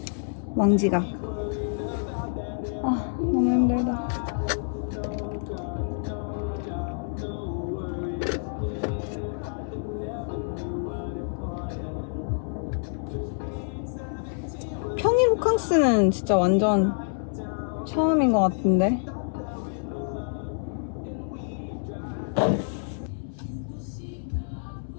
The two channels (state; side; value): silent; right; 60 dB below the other